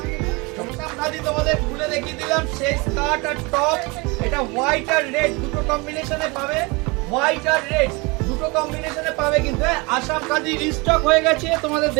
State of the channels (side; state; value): left; quieter; 26.8 dB